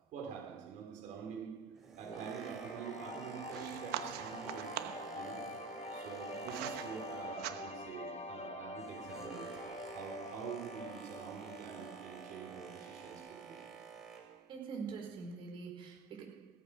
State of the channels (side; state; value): left; quieter; 3.9 dB